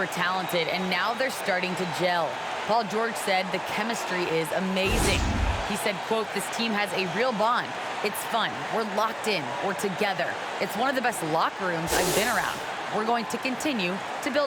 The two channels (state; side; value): identical; both; correlation 1.00